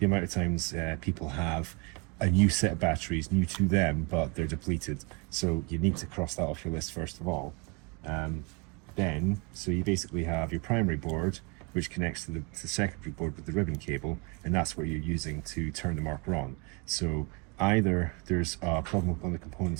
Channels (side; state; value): left; quieter; 30.8 dB